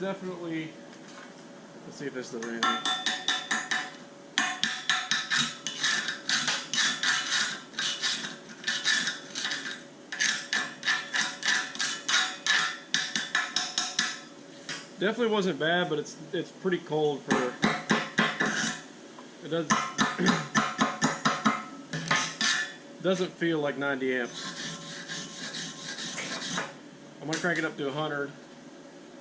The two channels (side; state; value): both; identical; correlation 1.00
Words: let's see if this does anything. Definitely wasn't bad, but it's pretty cold for, it doesn't feel like 90 amps. I'm gonna crank it up to 100